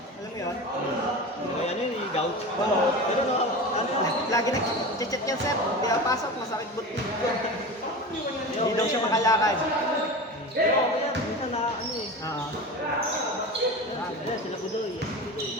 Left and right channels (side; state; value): both; normal; correlation 0.29